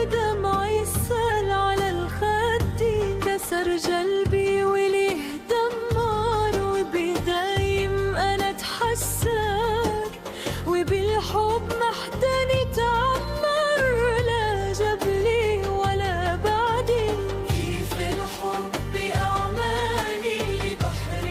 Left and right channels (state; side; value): identical; both; correlation 1.00